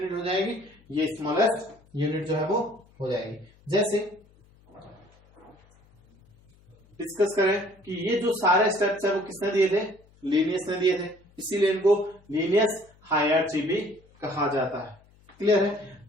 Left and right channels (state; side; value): noise; left; hum, 29 dB below the sound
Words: हो जाएगी, ये स्मॉलेस्ट यूनिट जो है वो हो जाएगी। जैसे डिस्कस करें कि ये जो सारे स्टेप्स है वो किसने दिए थे, लीनियस ने दिए थे, इसीलिए इनको लीनियस हायरार्ची भी कहा जाता है। क्लियर है?